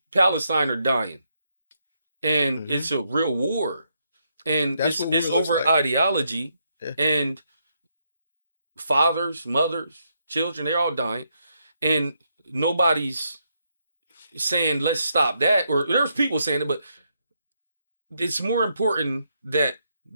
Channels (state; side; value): inverted; both; correlation -0.78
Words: Palestine are dying, and it's a real war, and it's over ideology, and fathers, mothers, children, they're all dying, and nobody's saying let's stop that, or there's people saying it, but it's more important that